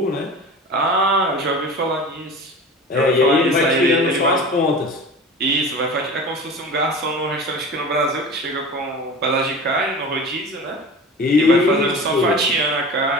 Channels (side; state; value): both; normal; correlation 0.35